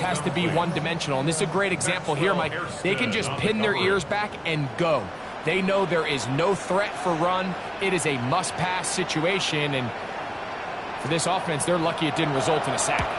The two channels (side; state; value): both; identical; correlation 1.00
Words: to be one-dimensional. And this is a great example here, Mike. They can just pin their ears back and go. They know there is no threat for run. It is a must-pass situation. And for this offense, they're lucky it didn't result in a sack.